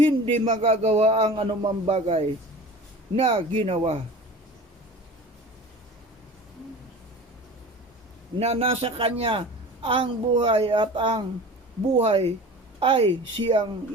magagawa ang anumang bagay na ginawa. Na nasa kanya ang buhay at ang buhay ay siyang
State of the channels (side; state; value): both; normal; correlation 0.38